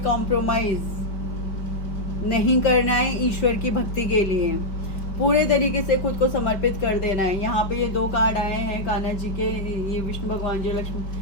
कॉम्प्रोमाइज नहीं करना है ईश्वर की भक्ति के लिए, पूरे तरीके से खुद को समर्पित कर देना है। यहाँ पे ये 2 कार्ड आए हैं कान्हा जी के, ये विष्णु भगवान जी,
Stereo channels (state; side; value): late; right; 5.1 ms